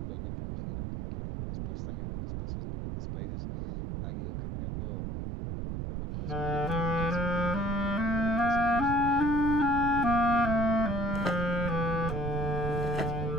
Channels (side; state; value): right; noise; rumble, 4 dB below the sound